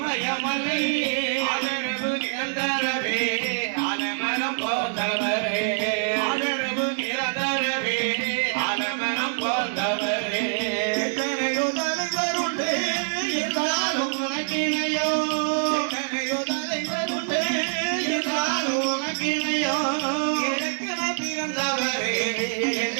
ஆதரவு நிரந்தரவே ஆலமனம் போந்தவரே ஆதரவு நிரந்தரவே ஆலமனம் போந்தவரே எத்தனையோ தலைவருண்டு என்றாலும் உனக்கிணையோ எத்தனையோ தலைவருண்டு என்றாலும் உனக்கிணையோ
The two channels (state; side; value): silent; left; digital silence